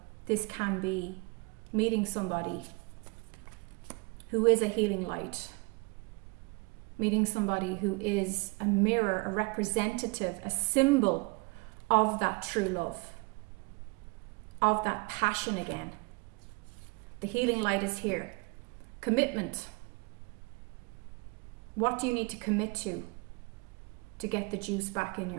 this can be meeting somebody who is a healing light. Meeting somebody who is a mirror, a representative, a symbol of that true love, of that passion again. The healing light is here. Commitment. What do you need to commit to get the juice back in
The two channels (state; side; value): quieter; left; 28.5 dB